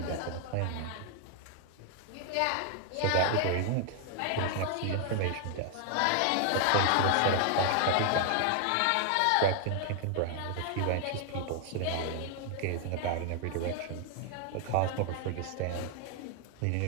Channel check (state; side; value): different; both; correlation 0.00